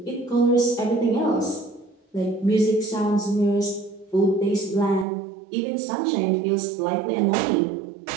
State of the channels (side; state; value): left; drops out; at 5.1 s